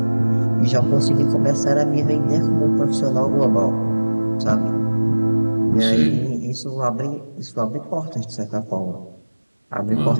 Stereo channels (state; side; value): inverted; both; correlation -1.00